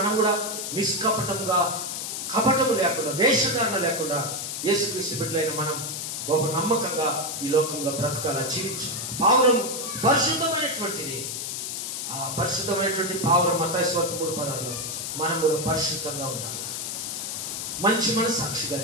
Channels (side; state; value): left; noise; hiss, 4 dB below the sound